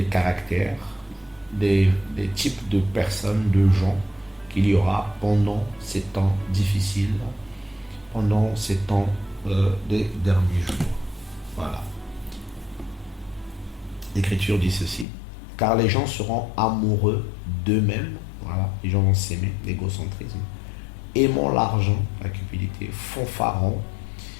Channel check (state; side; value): drops out; right; at 15.1 s